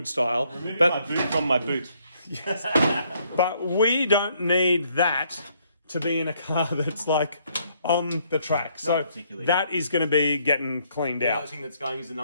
style. Removing my boot from my boot. Yes. But we don't need that to be in a car that's like on the track. So that is going to be getting cleaned out. The other thing that's going is the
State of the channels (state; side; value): inverted; both; correlation -0.69